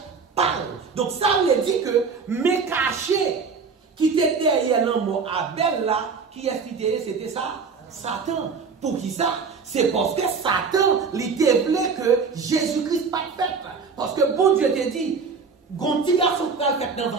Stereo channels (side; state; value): left; quieter; 5.2 dB